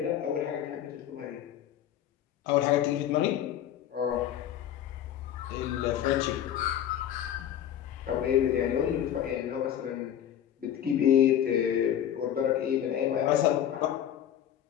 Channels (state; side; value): quieter; right; 10.5 dB